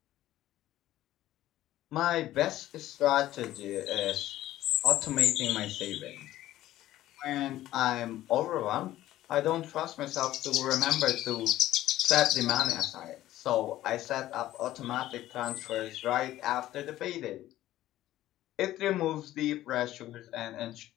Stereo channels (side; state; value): right; quieter; 14.4 dB